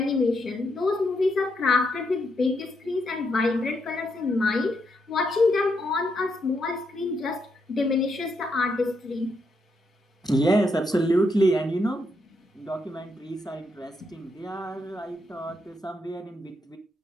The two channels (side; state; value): both; normal; correlation 0.79